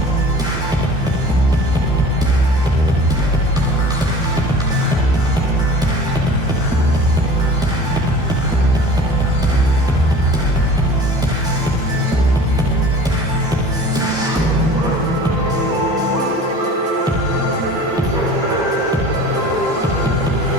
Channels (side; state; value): both; normal; correlation 0.41